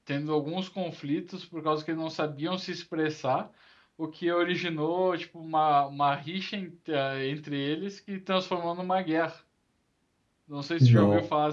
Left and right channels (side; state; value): both; identical; correlation 1.00